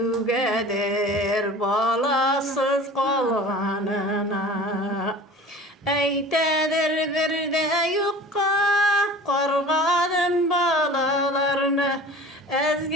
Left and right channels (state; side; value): normal; both; correlation 0.40